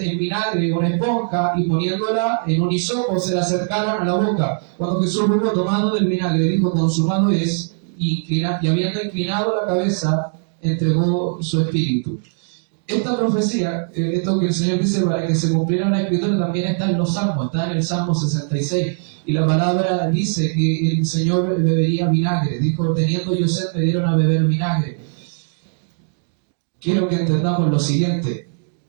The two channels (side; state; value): left; silent; 64 dB below the other